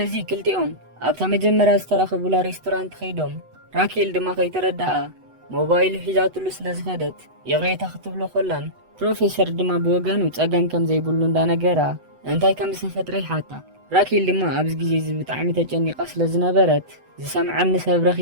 እዚ ክልቲኦም ኣብታ መጀመርያ ዝተራኸቡላ ሬስቶራንት ኸይዶም ራኬል ድማ ከይተረዳኣ ሞባይሉ ሒዛትሉ ስለ ዝኸደት የቕሬታ ክትብሎ ኮላን ፕሮፌሰር ድማ ብወገኑ ጸገም ከም ዘይብሉ እንዳነገራ እንታይ ከም ዝተፈጥረ ይሓታ። ራኬል ድማ ኣብዚ ግዜ እዚ ብጣዕሚ ተጨኒቓ ስለ ዝነበረት ዝሰምዐኒ ሰብ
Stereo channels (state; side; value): late; left; 8.0 ms